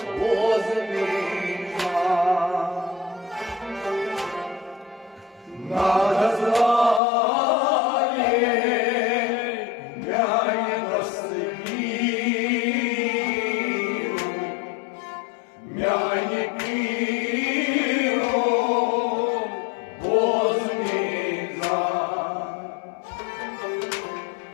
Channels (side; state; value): right; drops out; at 7.0 s